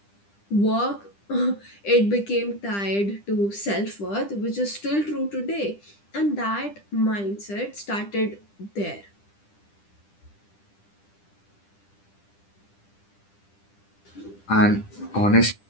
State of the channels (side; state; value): right; late; 10 ms